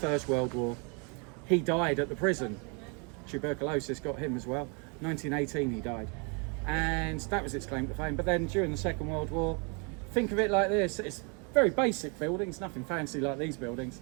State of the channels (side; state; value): left; quieter; 35.0 dB